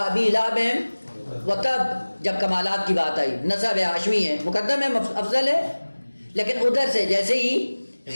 ابی لہب وتب، جب کمالات کی بات آئی، نسب ہے، ہاشمی ہے، مقدم ہے، افضل ہے، لیکن ادھر سے جیسے ہی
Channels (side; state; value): both; inverted; correlation -1.00